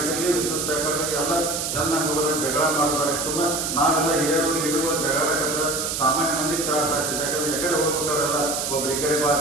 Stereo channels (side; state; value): right; noise; hiss, 2 dB below the sound